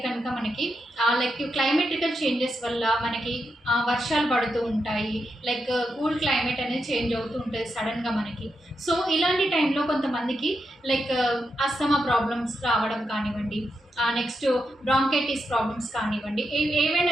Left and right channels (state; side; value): normal; both; correlation 0.85